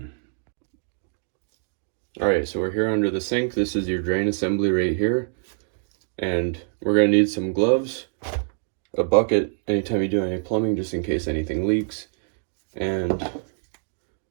Alright, so we're here under the sink. This is your drain assembly right here. And we're going to need some gloves, a bucket anytime you do any plumbing just in case anything leaks, and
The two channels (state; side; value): silent; left; 60 dB below the other